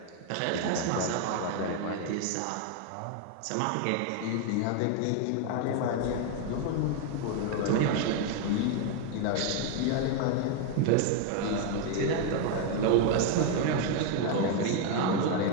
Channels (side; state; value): both; different; correlation 0.01